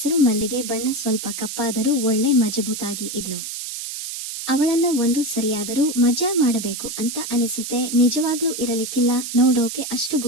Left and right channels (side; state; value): right; noise; hiss, 7 dB below the sound